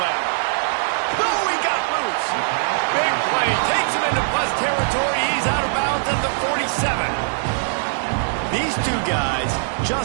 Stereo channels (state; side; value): silent; left; digital silence